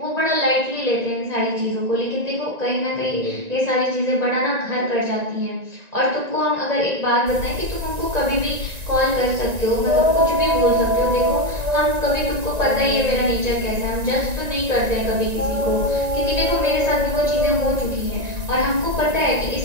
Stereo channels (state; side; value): late; left; 1.9 ms